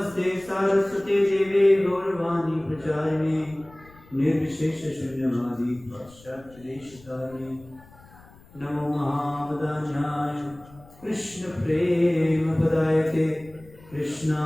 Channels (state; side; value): noise; left; rumble, 24 dB below the sound